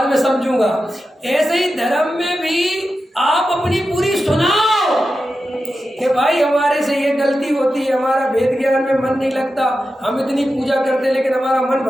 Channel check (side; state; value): both; normal; correlation 0.91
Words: में समझूंगा। ऐसे ही धर्म में भी आप अपनी पूरी सुनाओ कि भाई हमारे से ये गलती होती है, हमारा वेद ज्ञान में मन नहीं लगता, हम इतनी पूजा करते लेकिन हमारा मन